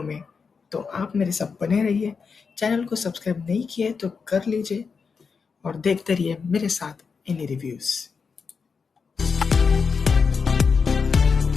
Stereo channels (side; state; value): right; quieter; 5.4 dB